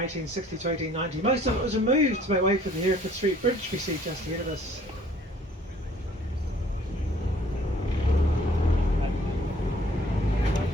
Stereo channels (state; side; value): normal; both; correlation 0.57